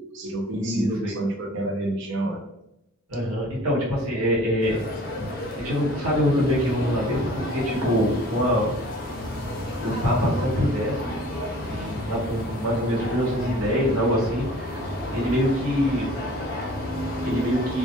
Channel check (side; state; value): both; normal; correlation 0.49